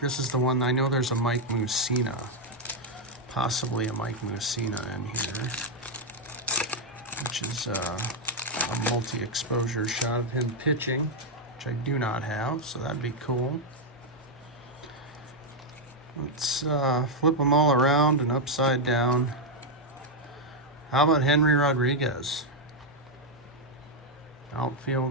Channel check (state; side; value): normal; both; correlation 0.00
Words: This is the one, I know there's a Mike Mussina. Possibly a Mike Mussina in here. Which is a multi-exposure shot of him pitching, which I do not have, so that'd be cool. Let's flip them all around and upside down. How about Henry Rodriguez?